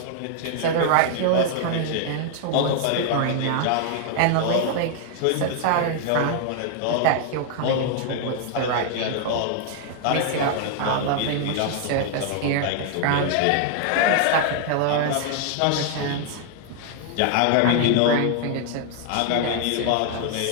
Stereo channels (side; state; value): both; different; correlation 0.00